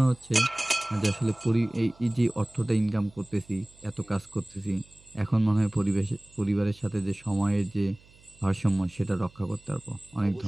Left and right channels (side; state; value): right; noise; hum, 27 dB below the sound